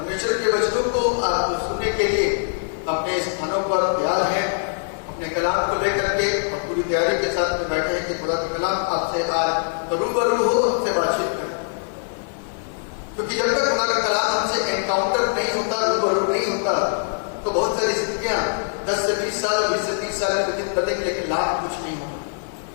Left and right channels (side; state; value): right; silent; 61 dB below the other